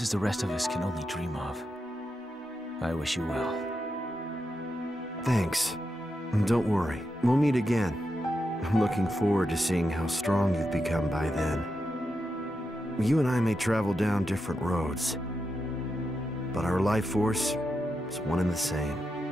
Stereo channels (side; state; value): both; normal; correlation 0.86